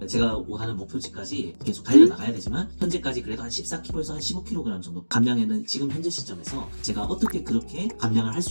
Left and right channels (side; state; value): both; inverted; correlation -1.00